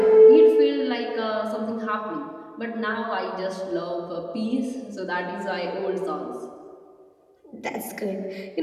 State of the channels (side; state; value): both; identical; correlation 1.00